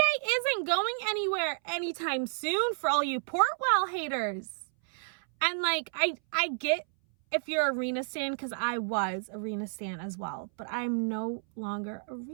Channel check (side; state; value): left; silent; 57 dB below the other